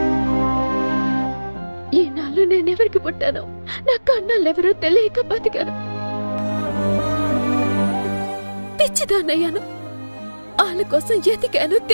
ఈనాళ్ళు నేనెవరికి పుట్టానో నా కన్నాళ్ళెవరో తెలియక బతికాను. పిచ్చిదాన్నయ్యాను. ఆ వాళ్ళ కోసం ఎతికాను,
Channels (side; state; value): both; inverted; correlation -1.00